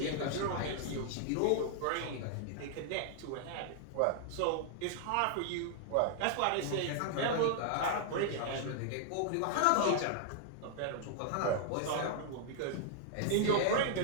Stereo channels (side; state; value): both; different; correlation -0.01